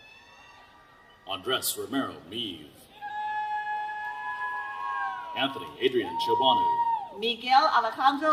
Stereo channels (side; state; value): both; identical; correlation 1.00